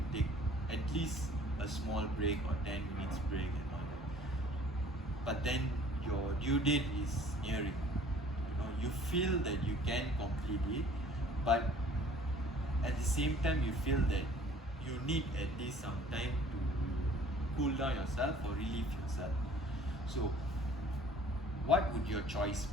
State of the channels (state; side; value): normal; both; correlation 0.52